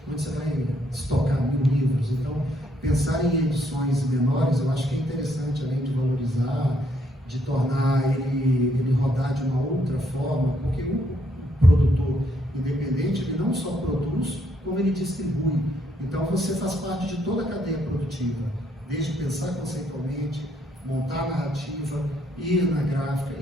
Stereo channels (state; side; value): normal; both; correlation 0.72